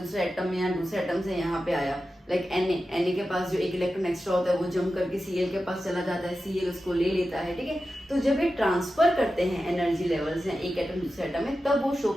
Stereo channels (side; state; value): both; normal; correlation 0.92